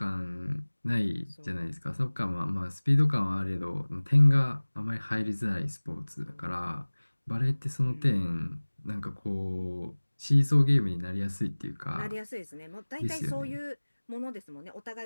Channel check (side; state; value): both; inverted; correlation -1.00